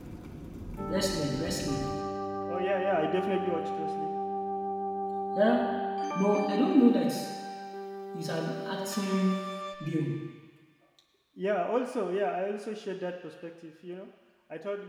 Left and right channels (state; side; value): identical; both; correlation 1.00